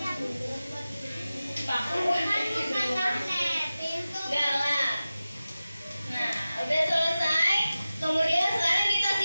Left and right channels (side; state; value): both; inverted; correlation -0.95